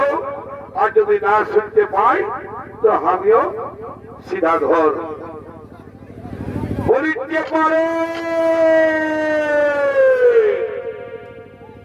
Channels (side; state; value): both; identical; correlation 1.00